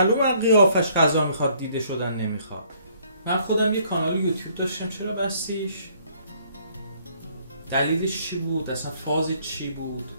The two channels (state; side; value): inverted; both; correlation -0.62